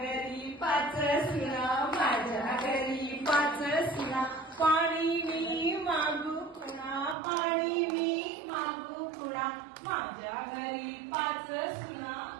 5 सुना, माझ्या घरी 5 सुना, पाणी मी मागू कुणा, पाणी मी मागू कुणा. माझ्या घरी 5 सुना.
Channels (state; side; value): drops out; left; at 7.2 s